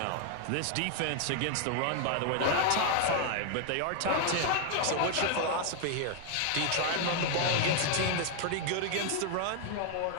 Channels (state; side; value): different; both; correlation 0.01